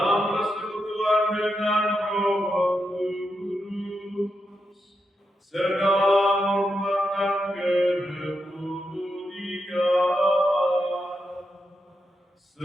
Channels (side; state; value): both; normal; correlation 0.85